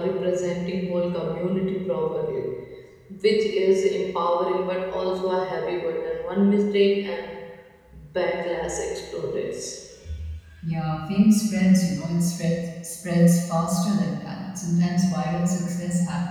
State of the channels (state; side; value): identical; both; correlation 1.00